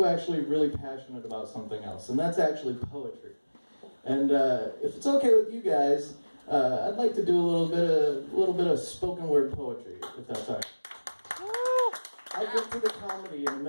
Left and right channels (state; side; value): inverted; both; correlation -1.00